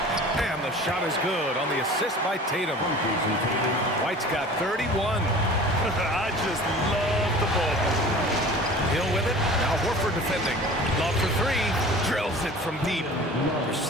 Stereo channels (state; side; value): normal; both; correlation 0.42